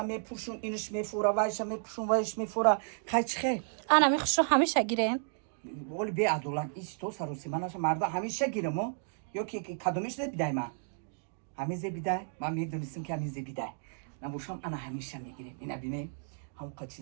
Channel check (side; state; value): left; silent; digital silence